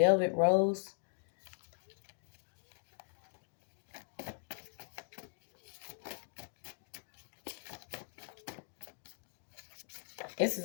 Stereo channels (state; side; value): silent; right; digital silence